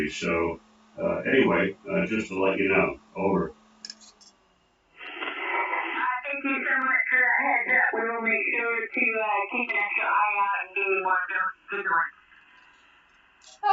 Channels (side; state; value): both; identical; correlation 1.00